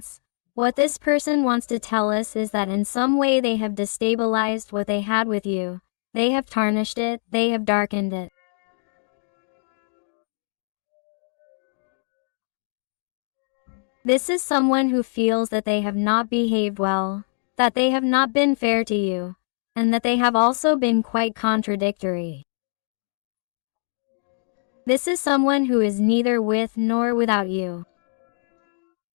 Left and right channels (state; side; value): silent; right; digital silence